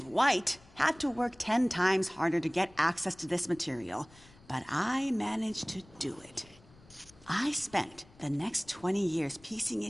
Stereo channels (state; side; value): noise; left; rumble, 25 dB below the sound